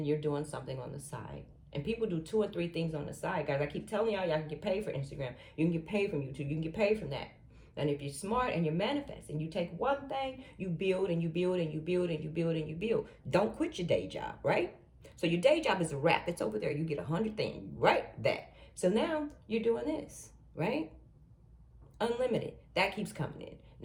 you're doing something on the side. And people do 2 or 3 things on the side, guys. I keep telling y'all can get paid for Instagram. You can get paid from YouTube. You can get paid from that. And if you're smart and you're manifesting, you take one thing, you build and you build and you build and you build and you build. Don't quit your day job, right? So your day job is a wrap. It's over there. You get 100 things, right? That. So now you're doing this, right? Unlimited. That keeps coming in.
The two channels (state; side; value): identical; both; correlation 1.00